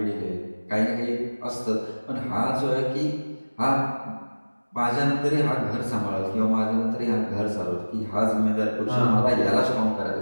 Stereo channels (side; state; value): both; inverted; correlation -1.00